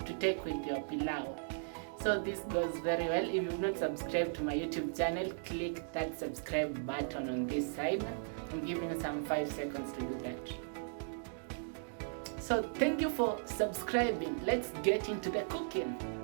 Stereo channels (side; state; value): left; silent; digital silence